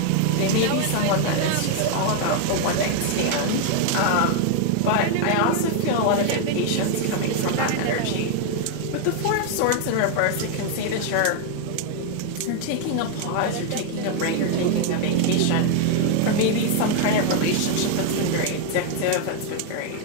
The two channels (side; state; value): both; different; correlation 0.00